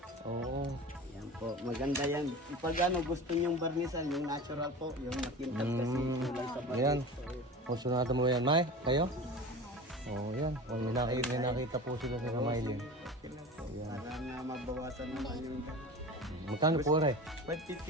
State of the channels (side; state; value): both; normal; correlation 0.34